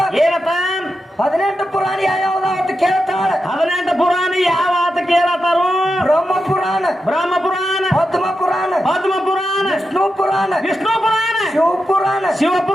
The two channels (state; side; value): normal; both; correlation 0.88